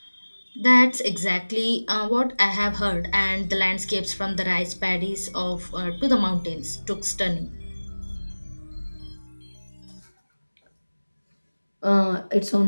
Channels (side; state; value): both; inverted; correlation -1.00